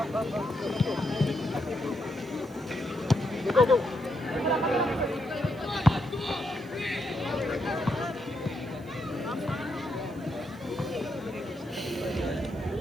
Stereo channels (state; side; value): noise; right; hiss, 27 dB below the sound